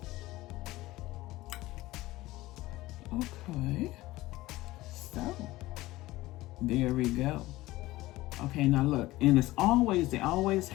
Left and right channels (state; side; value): quieter; right; 18.1 dB